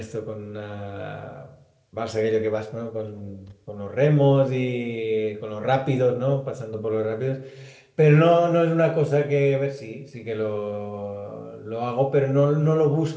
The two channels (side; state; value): both; identical; correlation 1.00